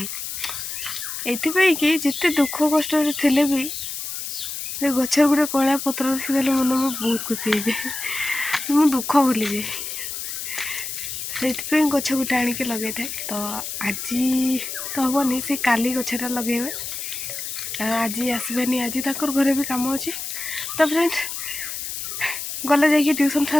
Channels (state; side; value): noise; left; hiss, 6 dB below the sound